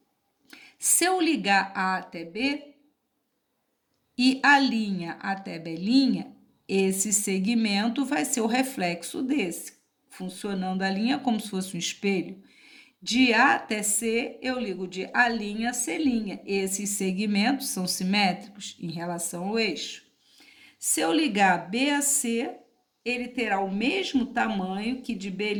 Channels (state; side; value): identical; both; correlation 1.00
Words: se eu ligar A até B e a linha até B', esse segmento vai ser o reflexo desse, funcionando a linha como se fosse um espelho. De A até C, eu ligo de A' a C'. Esses segmentos são simétricos em relação ao eixo. Se eu ligar B a C, ele terá o mesmo tamanho que de